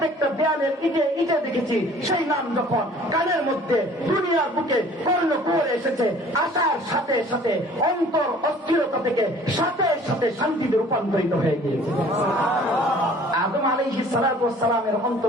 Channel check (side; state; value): both; normal; correlation 0.51